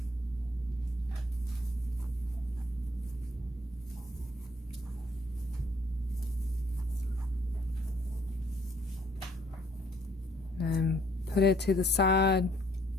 And put it to the side.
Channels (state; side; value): normal; both; correlation 0.64